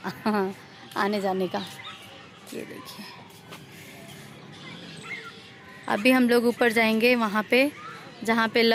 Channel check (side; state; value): both; identical; correlation 1.00